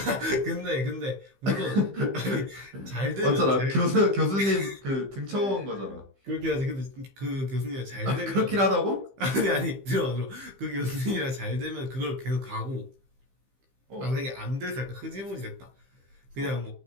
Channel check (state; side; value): late; left; 15 ms